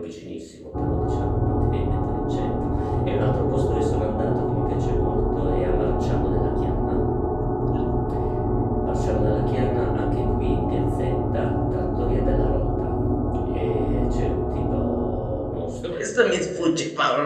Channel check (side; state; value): both; identical; correlation 1.00